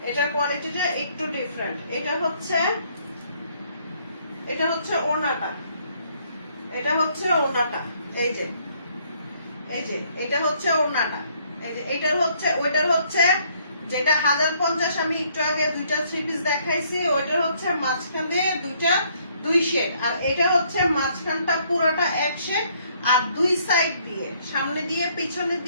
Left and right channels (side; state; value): both; inverted; correlation -0.67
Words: এটার কোয়ালিটিটা একটু ডিফারেন্ট। এটা হচ্ছে ওড়নাটা, এটা হচ্ছে ওড়নাটা, এই যে এটা হচ্ছে ওড়নাটা, এই যে এটার হচ্ছে ওইটার হচ্ছে যেটা 1050 আমি একটু আগে দুইটা থ্রি পিস দেখাইছি, ওইটার হচ্ছে মাঝখান দিয়ে দুই শেড, আর এটা হচ্ছে মাঝখানটা পুরোটা এক শেড, আর দুই সাইড দিয়ে সামনে দিয়ে পিছনে